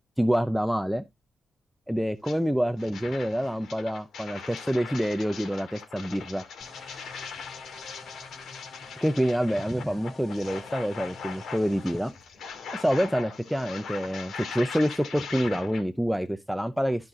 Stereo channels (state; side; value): normal; both; correlation 0.97